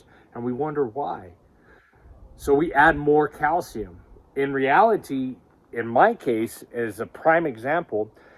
and we wonder why. So we add more calcium. In reality, in my case, as a prime example,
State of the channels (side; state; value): both; identical; correlation 1.00